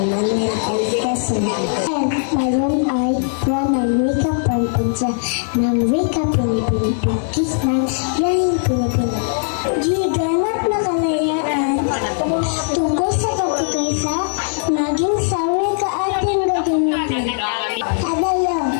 Manuel L. Quezon. Ngayon ay buwan ng wika pagpunsa ng wika Pilipino Pagkis ng Lahing Pilipino. G. Ganap na kalayaan tungkol sa pagkakaisa maging sa wika ating gagamitin. Adayo.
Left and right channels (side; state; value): right; silent; digital silence